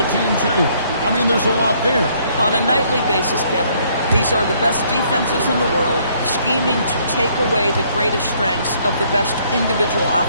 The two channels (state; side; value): inverted; both; correlation -0.65